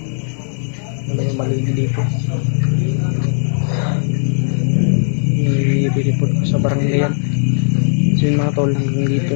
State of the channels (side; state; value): right; silent; 68 dB below the other